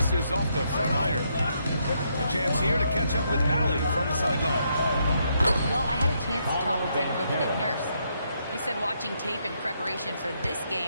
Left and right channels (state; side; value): inverted; both; correlation -0.76